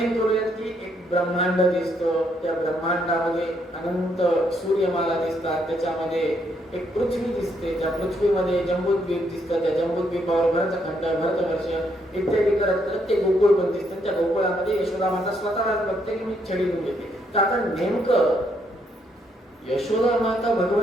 करूयात की एक ब्रह्मांड दिसतं, त्या ब्रह्मांडामध्ये अनंत सूर्यमाला दिसतात, त्याच्यामध्ये एक पृथ्वी दिसते, त्या पृथ्वीमध्ये जम्बूद्वीप दिसतं, त्या जम्बूद्वीपावर भरतखंड, भरतवर्ष इत्यादी करत करत ते गोकुळ पण दिसतं. त्या गोकुळामध्ये यशोदा माता स्वतःलाच बघते की मी छडी घेऊन येते. तर आता नेमकं यशोदा माता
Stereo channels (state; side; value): normal; both; correlation 0.74